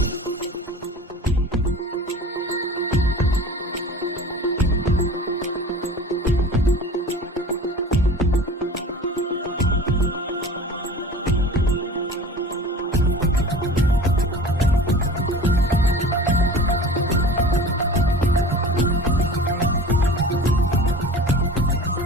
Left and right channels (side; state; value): both; normal; correlation 0.39